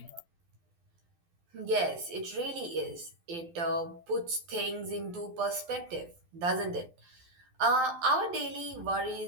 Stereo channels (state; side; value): late; left; 12 ms